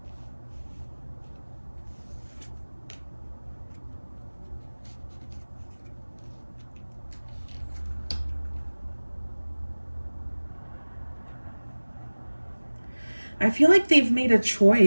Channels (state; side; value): inverted; both; correlation -1.00